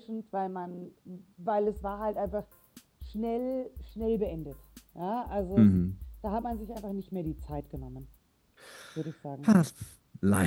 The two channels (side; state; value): both; identical; correlation 1.00